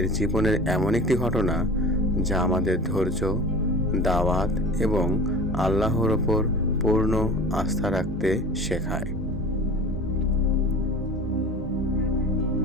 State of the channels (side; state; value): both; normal; correlation 0.37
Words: জীবনের এমন একটি ঘটনা যা আমাদের ধৈর্য, দাওয়াত এবং আল্লাহর ওপর পূর্ণ আস্থা রাখতে শেখায়।